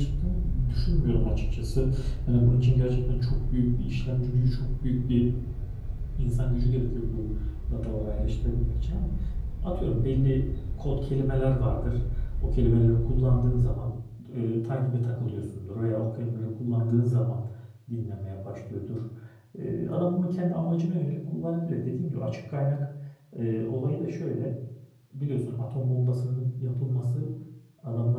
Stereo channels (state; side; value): identical; both; correlation 1.00